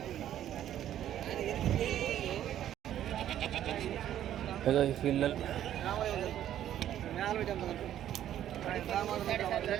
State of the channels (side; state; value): left; quieter; 11.4 dB